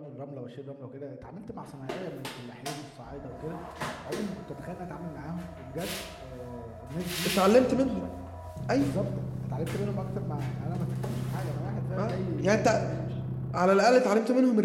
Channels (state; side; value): identical; both; correlation 1.00